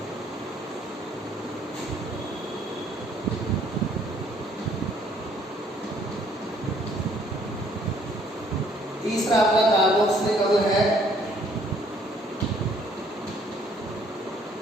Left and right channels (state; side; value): normal; both; correlation 0.63